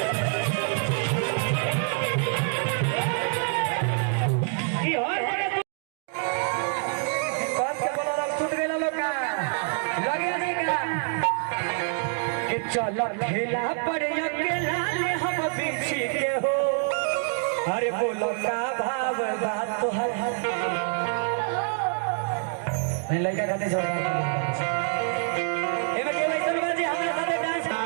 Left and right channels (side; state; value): left; silent; 59 dB below the other